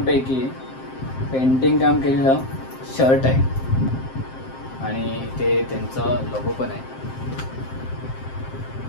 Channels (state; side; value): late; right; 7.6 ms